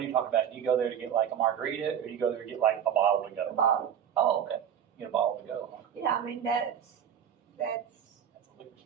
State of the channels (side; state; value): left; quieter; 9.0 dB